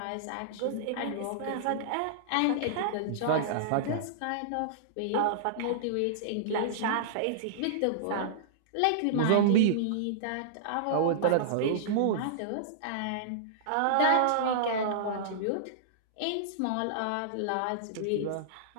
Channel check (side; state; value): both; different; correlation -0.02